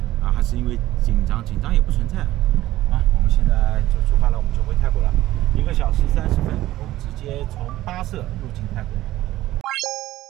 啊，还是因为紧张也不存在。啊，我们现在就出发了，我们就回泰国了。1个小时30分，我们直接从巴舍入境泰国。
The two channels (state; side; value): quieter; left; 15.4 dB